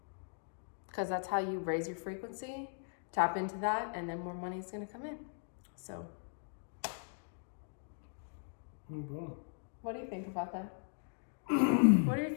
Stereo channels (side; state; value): right; silent; digital silence